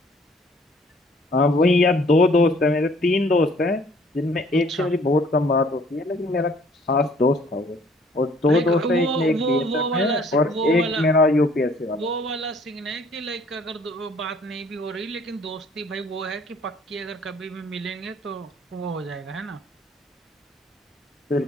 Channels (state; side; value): normal; both; correlation 0.58